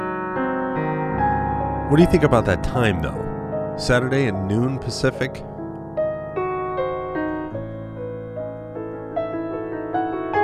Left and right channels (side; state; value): both; identical; correlation 1.00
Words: What do you think about that time, though? Saturday at noon Pacific?